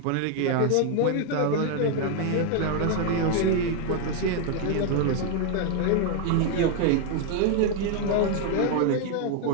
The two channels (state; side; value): different; both; correlation 0.01